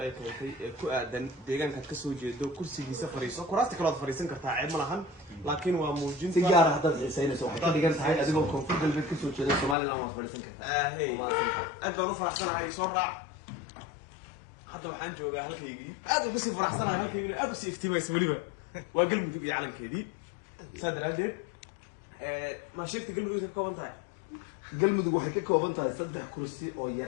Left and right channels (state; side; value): drops out; right; at 9.8 s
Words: ay keentay ee ku aadan deegaanka ka soo jeedo kursigiisa fariiso kuraasta kale aad fariisan kartaa ceeb ma lahan laakiin waa muujinta si gaar ah hadda xiisaynayso waxay ka dhigan tahay adigoo koonfur galbeed ka soo jeeda Soomaaliland waa fariisan kartaa aad baan u faraxsanahay soo raac hadda waxaan joogaa halkaygii aad ugu sii faraxsanahay halkaygii aad u sii iftiimaysa waliba waa galmudug iyo calankeedii saadaradeed ma sheegtay galmudug ka kooban tahay galmudug waxay ka kooban tahay 3 kursi oo